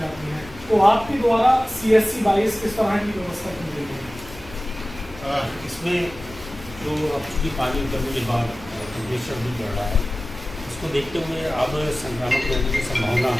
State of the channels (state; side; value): normal; both; correlation 0.96